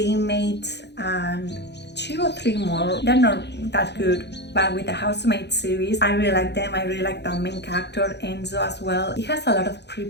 Inmate and 2 or 3 more. They're not that good, but with the Housemaid series, I really like them. I really like the main character Enzo as well. It has a lot of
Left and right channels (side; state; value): right; late; 0.50 ms